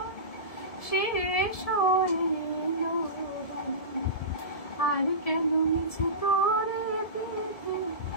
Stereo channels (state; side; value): late; right; 1.7 ms